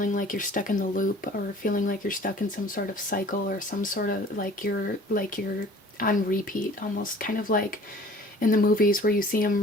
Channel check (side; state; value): both; normal; correlation 0.49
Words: like you're stuck in the loop, or feeling like you're stuck in some sort of cycle, or some sort of like you're on repeat, almost kind of like in the movies where you see